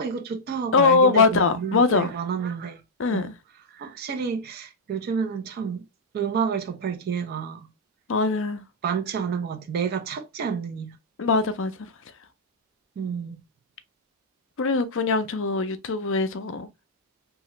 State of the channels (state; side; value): normal; both; correlation -0.07